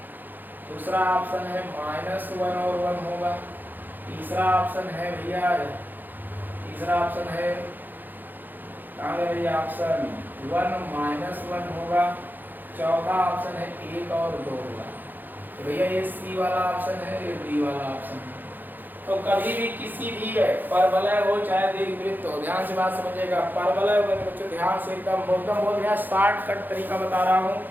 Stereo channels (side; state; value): left; late; 0.088 ms